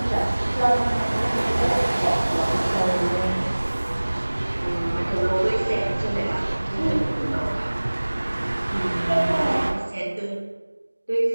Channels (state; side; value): inverted; both; correlation -1.00